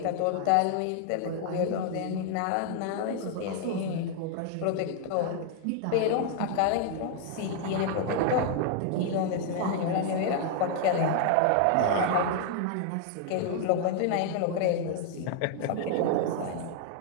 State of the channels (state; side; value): different; both; correlation 0.00